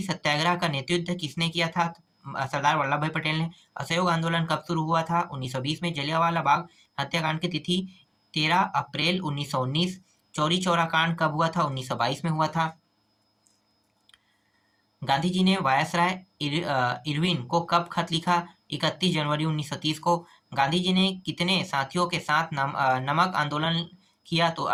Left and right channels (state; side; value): identical; both; correlation 1.00